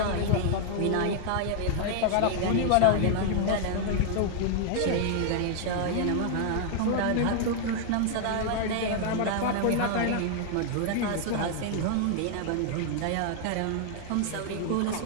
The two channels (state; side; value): different; both; correlation 0.00